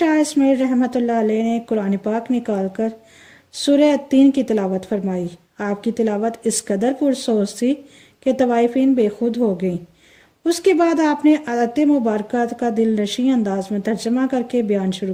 اسماعیل رحمۃ اللہ علیہ نے قرآن پاک نکال کر سورہ التین کی تلاوت فرمائی۔ آپ کی تلاوت اس قدر پرسوز تھی کہ طوائفین بے خود ہو گئیں۔ اس کے بعد آپ نے آیت مبارکہ کا دل نشیں انداز میں ترجمہ کر کے بیان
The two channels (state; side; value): identical; both; correlation 1.00